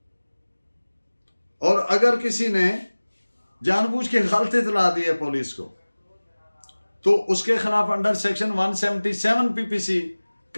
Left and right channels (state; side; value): inverted; both; correlation -1.00